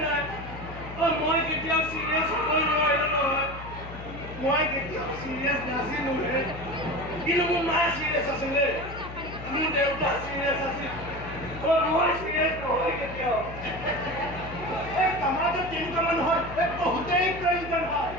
মই কেতিয়াও চিৰিয়াছ হ'বই নোৱাৰিলোঁ নহয় মই কেতিয়াও চিৰিয়াছ নাছিলোঁ কিন্তু মোৰ মা চিৰিয়াছ আছিলে মোৰ দেউতা চিৰিয়াছ আছিল মই চিৰিয়াছ নহয় কেতিয়াও এই সমাজত তেনেকুৱা মানুহৰ বহুতেই প্ৰয়োজন হয়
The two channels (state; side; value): noise; left; hum, 12 dB below the sound